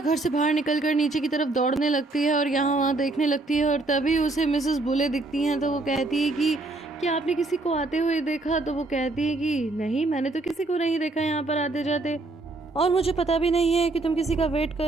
से बाहर निकलकर नीचे की तरफ दौड़ने लगती है और यहाँ वहाँ देखने लगती है। और तभी उसे मिसेस बुले दिखती हैं, तो वो कहती है कि क्या आपने किसी को आते हुए देखा? तो वो कहती है कि नहीं, मैंने तो किसी को नहीं देखा यहाँ पर आते जाते, और मुझे पता भी नहीं है कि तुम किसी का वेट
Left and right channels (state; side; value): quieter; left; 3.1 dB